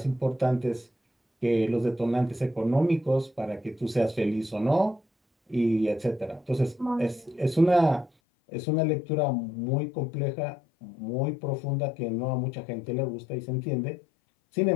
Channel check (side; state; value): right; drops out; at 8.1 s